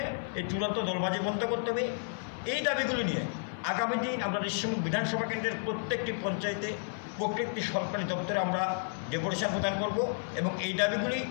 এই চূড়ান্ত দলবাজি বন্ধ করতে হবে। এই দাবিগুলো নিয়ে আগামী দিন আমরা রিসমুক বিধানসভা কেন্দ্রের প্রত্যেকটি পঞ্চায়েতে প্রত্যেকটি সরকারি দপ্তরে আমরা ডেপুটেশন প্রদান করব এবং এই দাবিগুলি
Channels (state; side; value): silent; right; 57 dB below the other